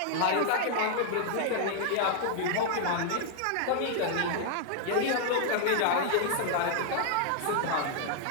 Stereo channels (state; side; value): different; both; correlation 0.00